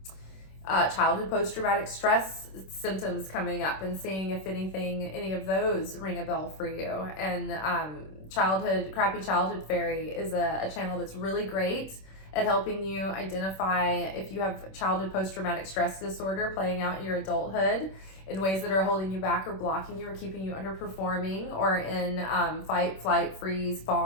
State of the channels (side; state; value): right; late; 26 ms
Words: childhood post-traumatic stress symptoms coming up and seeing if any of those ring a bell for you. And crappy childhood fairy is a channel that's really great at helping you identify if you have childhood post-traumatic stress disorder playing out in your adulthood in ways that are holding you back or blocking you or keeping you underperforming or in fight, flight, freeze,